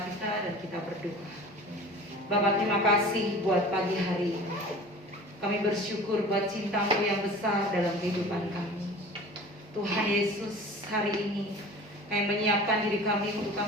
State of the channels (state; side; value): normal; both; correlation 0.41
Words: kita dan kita berdoa. Bapak, terima kasih buat pagi hari ini. Kami bersyukur buat cinta-Mu yang besar dalam kehidupan kami. Tuhan Yesus, hari ini kami menyiapkan diri kami untuk